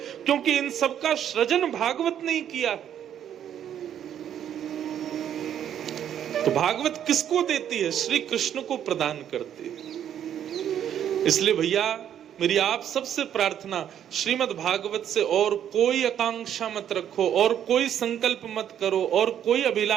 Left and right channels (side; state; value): left; quieter; 9.8 dB